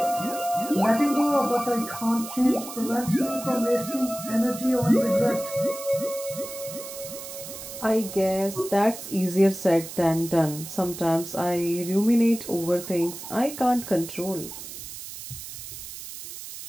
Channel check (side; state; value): right; noise; hiss, 11 dB below the sound